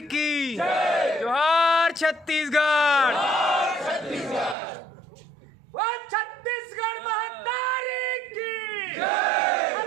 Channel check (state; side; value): drops out; left; at 4.5 s